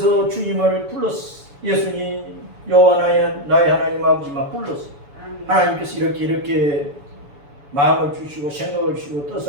주님을 불렀어. 예수님 여호와 나의 하나님 아버지만 불렀어. 하나님께서 이렇게 마음을 주시고 생각을 주시고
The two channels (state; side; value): late; left; 7.0 ms